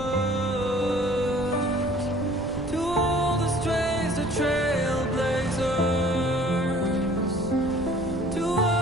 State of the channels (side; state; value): right; noise; rumble, 15 dB below the sound